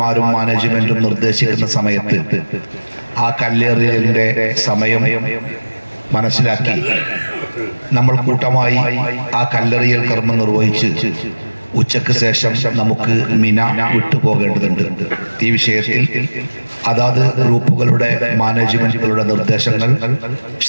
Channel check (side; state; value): both; inverted; correlation -1.00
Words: മാനേജ്മെന്റും നിർദ്ദേശിക്കുന്ന സമയത്ത് ആ കല്ലെറിയലിന്റെ സമയം മനസ്സിലാക്കി നമ്മൾ കൂട്ടമായി ആ കല്ലെറിയൽ കർമ്മം നിർവഹിച്ച് ഉച്ചയ്ക്ക് ശേഷം നമുക്ക് മിന വിട്ടുപോകേണ്ടതുണ്ട്. ഈ വിഷയത്തിൽ അതാത് ഗ്രൂപ്പുകളുടെ മാനേജ്മെന്റുകളുടെ നിർദ്ദേശങ്ങൾ